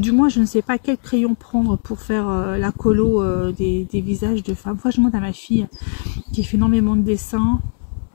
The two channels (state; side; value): silent; right; 67 dB below the other